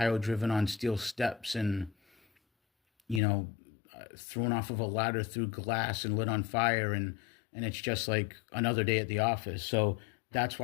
driven on steel steps and, you know, thrown off of a ladder through glass and lit on fire, and it's just like another day at the office. So that's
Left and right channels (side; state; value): right; drops out; at 3.2 s